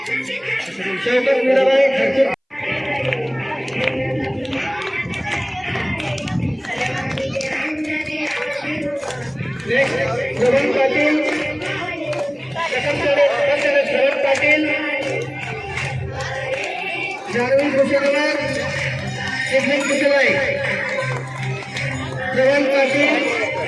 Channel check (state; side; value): identical; both; correlation 1.00